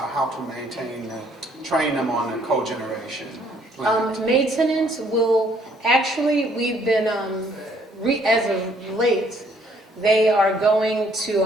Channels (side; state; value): both; normal; correlation 0.64